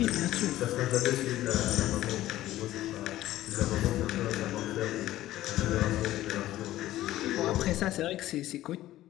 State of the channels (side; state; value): right; quieter; 14.7 dB